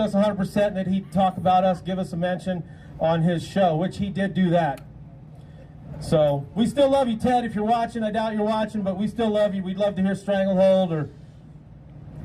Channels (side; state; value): both; identical; correlation 1.00